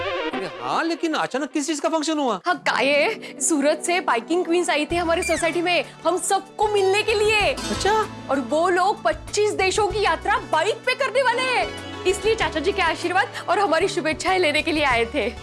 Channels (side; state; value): both; identical; correlation 1.00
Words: हाँ लेकिन अचानक किस चीज का फंक्शन हुआ? हाँ काये, सूरत से बाइकिंग क्वींस आई थी हमारी सोसाइटी में हम सबको मिलने के लिए। अच्छा। और वो लोग 25 देशों की यात्रा बाइक पे करने वाले हैं, इसलिए चाचा जी के आशीर्वाद और हमारी शुभेच्छाएं लेने के लिए आए थे।